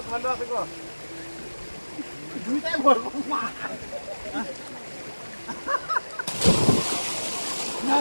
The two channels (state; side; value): inverted; both; correlation -1.00